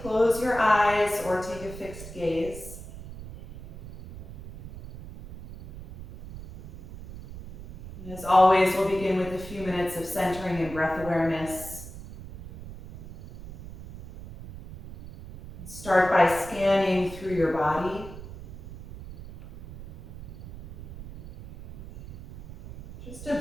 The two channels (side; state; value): right; noise; rumble, 14 dB below the sound